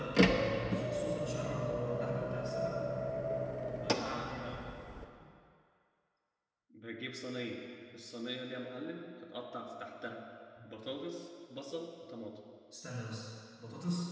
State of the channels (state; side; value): identical; both; correlation 1.00